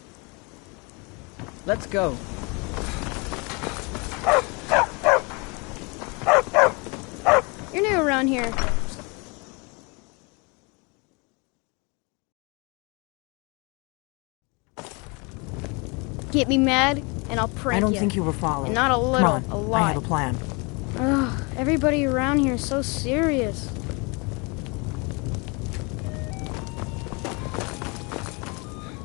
Let's go. You're new around here. Get me mad, and I'll prank you. I don't think you were followed. And not a little, Come on, a lot. I have a plan. Ugh, everybody around here is so serious.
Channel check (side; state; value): right; quieter; 30.1 dB